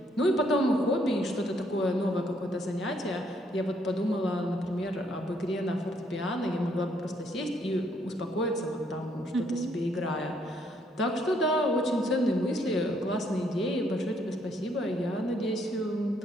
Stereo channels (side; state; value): both; normal; correlation 0.70